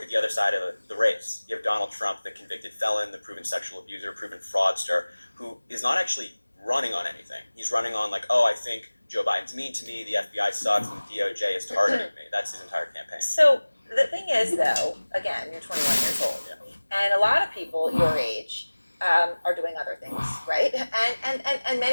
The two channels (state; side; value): inverted; both; correlation -1.00